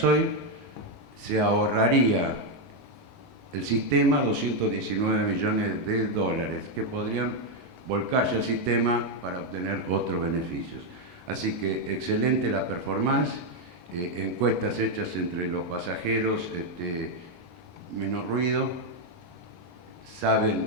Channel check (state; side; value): normal; both; correlation 0.03